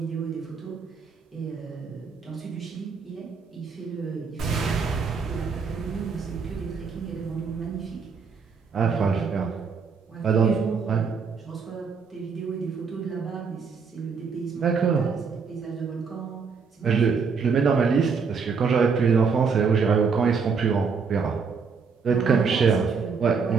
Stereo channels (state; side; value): quieter; left; 5.5 dB